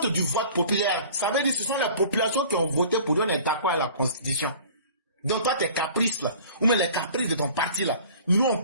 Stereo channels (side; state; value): both; inverted; correlation -0.46